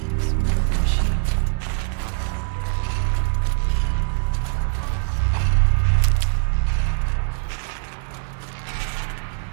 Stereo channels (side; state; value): left; silent; 59 dB below the other